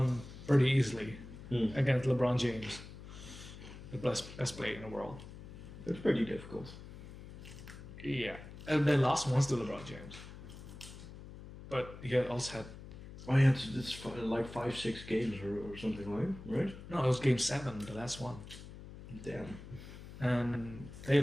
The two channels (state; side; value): noise; left; hum, 14 dB below the sound